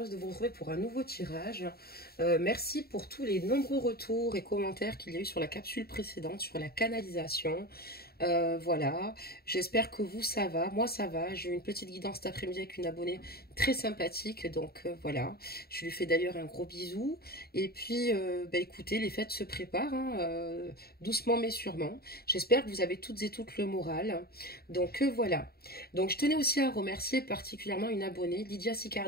de vous retrouver pour un nouveau tirage. Merci pour tous les nombreux retours et commentaires qu'il y a eu sur la capsule précédente, sur la canalisation. Voilà, j'espère que vous ça va, moi ça va, j'ai eu une petite guidance cet après-midi avec une abonnée très sympathique, donc voilà, je lui fais d'ailleurs un gros bisou, et puis bah, écoutez, les fêtes se préparent, hein, doucement mais sûrement, j'espère que vous avez toutes et toutes le moral, donc voilà, donc je tenais aussi à remercier particulièrement une abonnée, Lydia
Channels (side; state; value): right; late; 0.45 ms